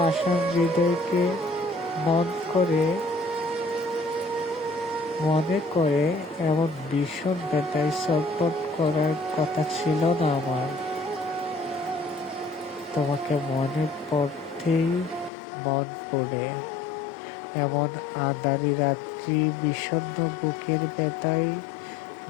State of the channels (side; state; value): right; drops out; at 15.3 s